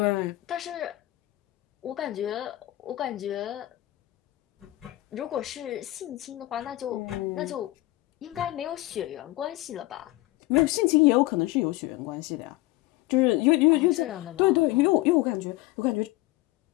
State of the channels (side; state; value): right; quieter; 18.1 dB